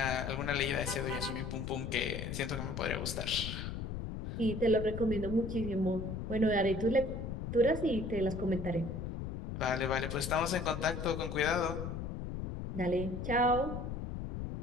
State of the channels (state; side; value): noise; left; rumble, 5 dB below the sound